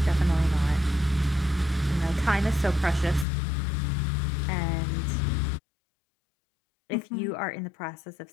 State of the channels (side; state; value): right; drops out; at 3.2 s